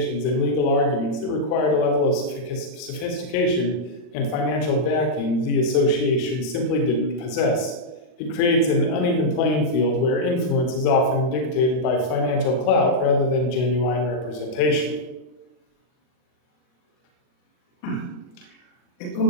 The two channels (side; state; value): right; late; 40 ms